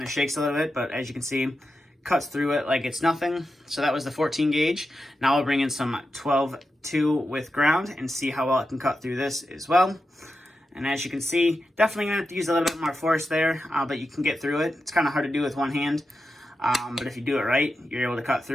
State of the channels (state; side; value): normal; both; correlation 0.89